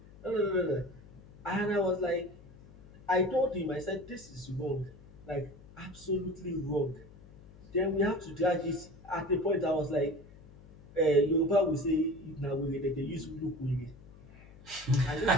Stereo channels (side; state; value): left; noise; hum, 21 dB below the sound